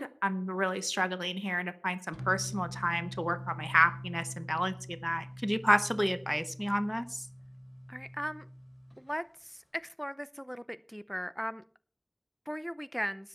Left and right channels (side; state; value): both; identical; correlation 1.00